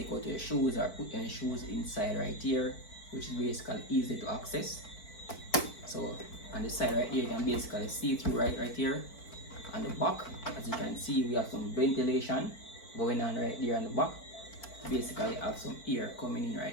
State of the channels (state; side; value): late; right; 4.5 ms